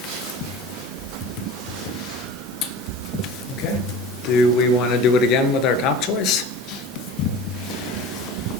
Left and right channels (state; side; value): normal; both; correlation 0.36